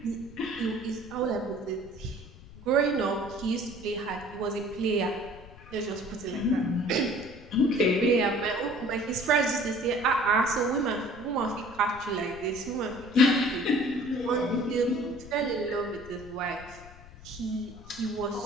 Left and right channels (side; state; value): left; noise; rumble, 19 dB below the sound